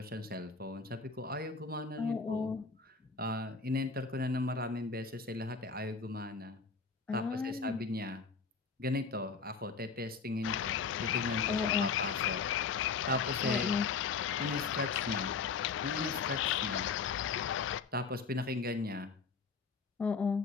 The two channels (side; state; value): right; quieter; 5.0 dB